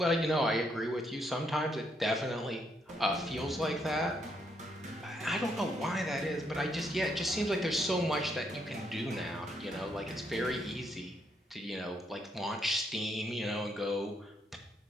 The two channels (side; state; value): both; normal; correlation 0.75